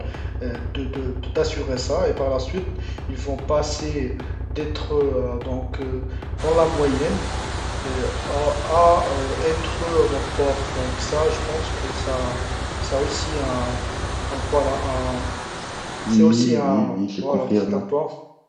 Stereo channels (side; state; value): both; identical; correlation 1.00